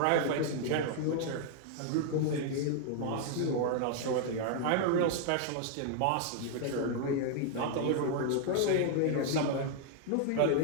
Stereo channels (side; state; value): both; different; correlation 0.00